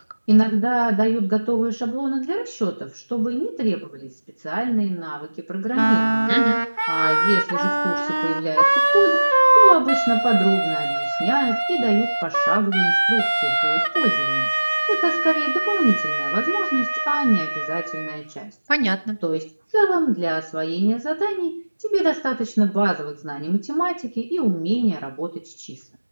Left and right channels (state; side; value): inverted; both; correlation -1.00